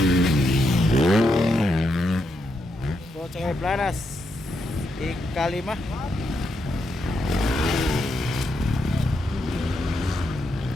Go to Koy Planas. Ikalima.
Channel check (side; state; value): both; normal; correlation 0.81